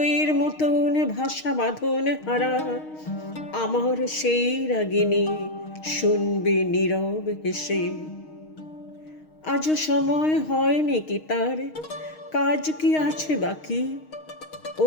মতন ভাষা বাঁধন হারা আমার সেই রাগিনী শুনবে নীরব হেসে। আজও সময় হয়নি কি তার, কাজ কি আছে বাকি?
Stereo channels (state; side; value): late; right; 6.4 ms